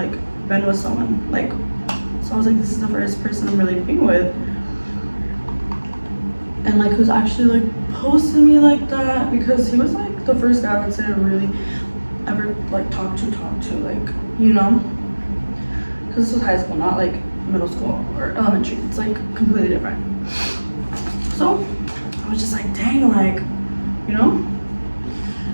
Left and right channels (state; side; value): inverted; both; correlation -1.00